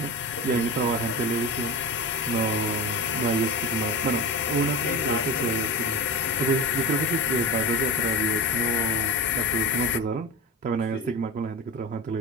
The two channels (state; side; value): normal; both; correlation 0.26